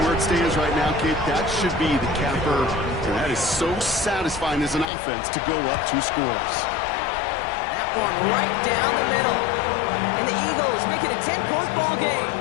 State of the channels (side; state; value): right; drops out; at 4.9 s